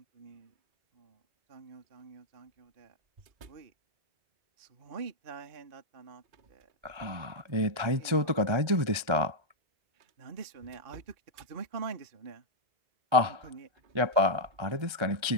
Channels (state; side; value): late; left; 1.4 ms